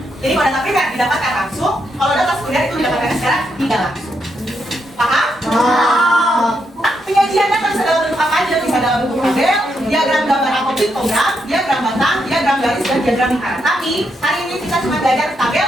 Jadi kalau data primer didapatkan langsung, kalau data sekunder itu didapatkan secara tidak langsung. Paham? Penyajian data bisa dalam bentuk apa aja? Bisa dalam bentuk tabel, diagram gambar atau piktogram, diagram batang, diagram garis, dan diagram lingkaran. Tapi hari ini kita cuma belajar tabel,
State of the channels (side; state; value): both; normal; correlation 0.80